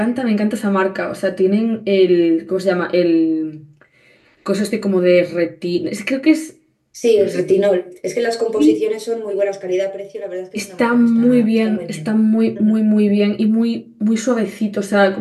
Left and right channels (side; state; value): both; identical; correlation 1.00